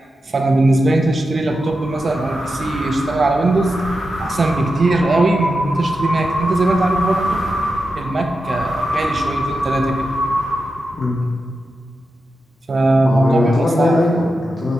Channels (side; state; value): both; normal; correlation 0.89